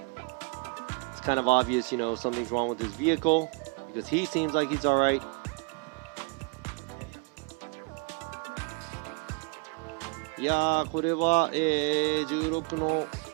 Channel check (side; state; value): left; quieter; 32.2 dB